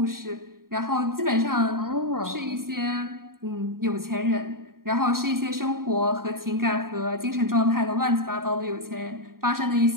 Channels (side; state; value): left; late; 0.92 ms